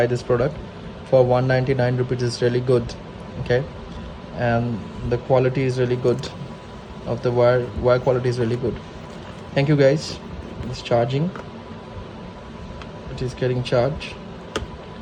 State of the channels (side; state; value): both; identical; correlation 1.00